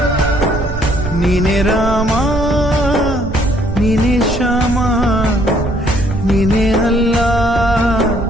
ನೀನೆ ರಾಮ ನೀನೆ ಶ್ಯಾಮ ನೀನೆ ಅಲ್ಲ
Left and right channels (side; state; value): right; noise; rumble, 6 dB below the sound